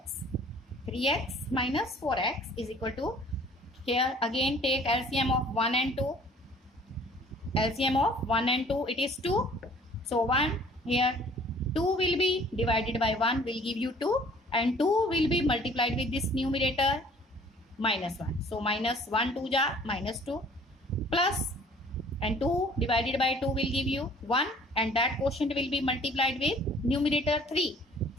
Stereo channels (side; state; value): both; normal; correlation 0.53